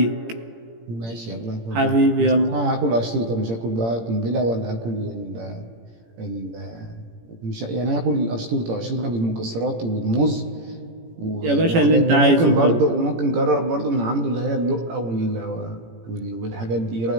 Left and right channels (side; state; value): left; late; 17 ms